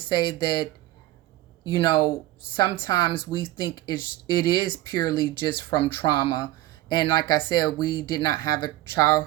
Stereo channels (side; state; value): left; quieter; 16.0 dB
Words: that, sometimes we think it is purely just from trauma. And like I said, we did not have a